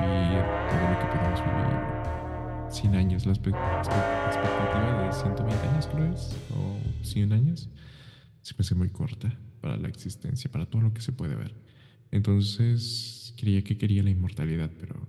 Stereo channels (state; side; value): identical; both; correlation 1.00